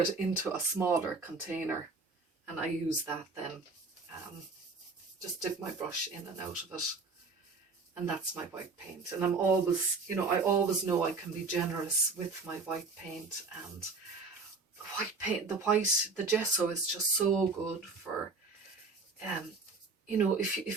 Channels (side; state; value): left; quieter; 4.1 dB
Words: into a smaller container, and I use that then. Just dip my brush in and out of it, and that's my white paint. And I'm always, you know, I always know I can be generous with my white paint. And white paint, the gesso is just so good for, you know,